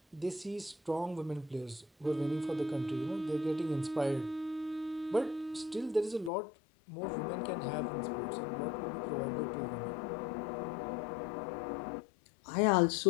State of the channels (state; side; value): drops out; right; at 6.3 s